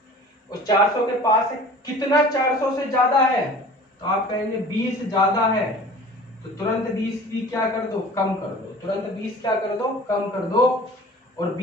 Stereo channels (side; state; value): both; normal; correlation 0.43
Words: और 400 के पास है, कितना 400 से ज्यादा है, तो आप कहेंगे 20 ज्यादा है, तो तुरंत 20 भी क्या कर दो कम कर दो, तुरंत 20 क्या कर दो कम कर दो, और